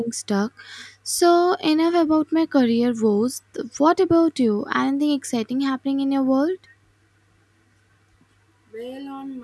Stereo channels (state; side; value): identical; both; correlation 1.00